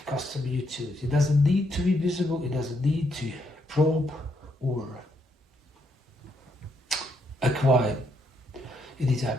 customer utility. It doesn't need to be visible, it doesn't need to probe or acquire any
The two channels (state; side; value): normal; both; correlation 0.76